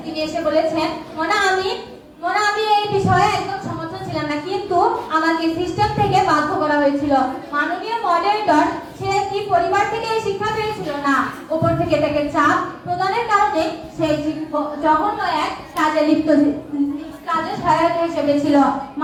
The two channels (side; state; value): both; identical; correlation 1.00